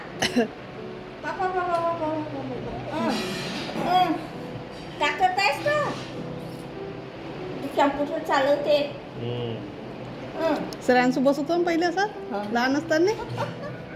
टाकत आहेस का कॅम्प्युटर चालवते. श्रांशू बसवतो ना पहिले असं लहान असताना.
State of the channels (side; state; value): both; identical; correlation 1.00